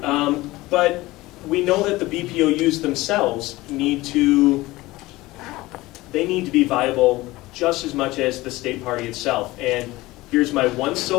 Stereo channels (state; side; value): quieter; right; 19.3 dB